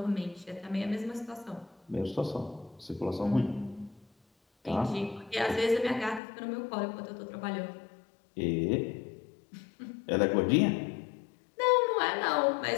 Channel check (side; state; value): right; drops out; at 6.2 s